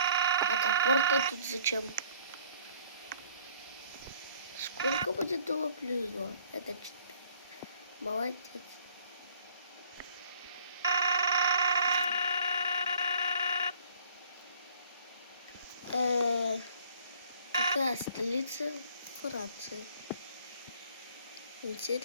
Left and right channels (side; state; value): both; inverted; correlation -0.57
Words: А топор-то тут зачем? Сколько будет 2 плюс 2? Это 4. Молодец. Какая столица Франции?